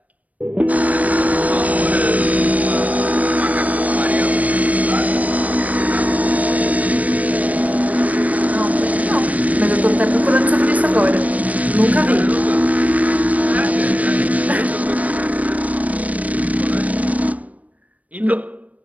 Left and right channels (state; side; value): late; left; 0.071 ms